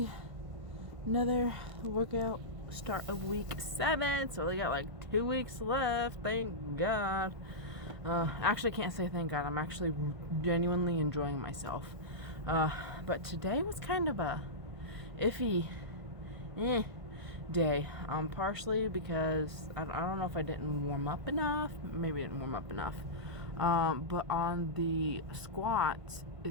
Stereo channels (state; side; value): late; left; 1.5 ms